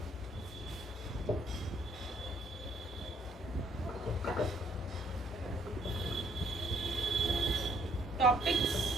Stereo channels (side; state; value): both; normal; correlation 0.65